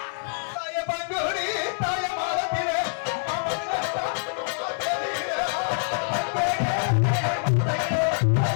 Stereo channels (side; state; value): right; silent; 61 dB below the other